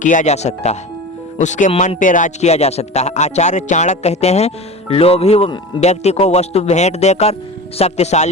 जा सकता है, उसके मन पे राज किया जा सकता है। आचार्य चाणक्य कहते हैं, लोभी व्यक्ति को वस्तु भेंट देकर,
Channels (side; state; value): both; normal; correlation 0.31